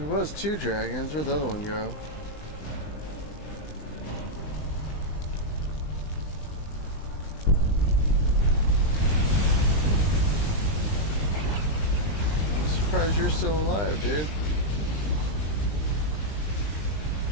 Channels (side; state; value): right; late; 20 ms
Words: was 2 dragons. Where'd the other one go? I'm surprised you're still alive, dude.